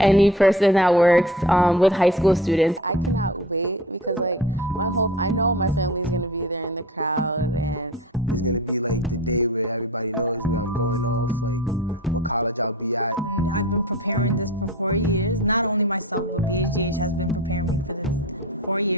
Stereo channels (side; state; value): both; normal; correlation 0.36